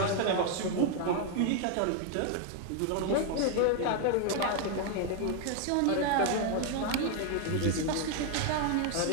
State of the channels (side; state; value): both; different; correlation 0.00